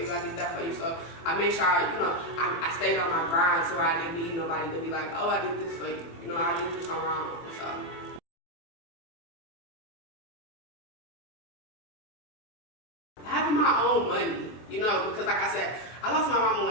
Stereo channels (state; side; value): late; right; 24 ms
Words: I did that for you. So I made sure I stayed on my grind, so I didn't need nobody to be like, oh, I did this for you. You know, I did this on my own. So having my own money, you know, because like I said, I lost my mama